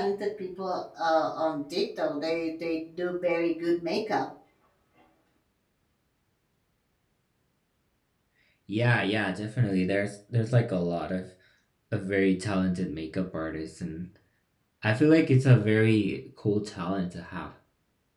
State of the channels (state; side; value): identical; both; correlation 1.00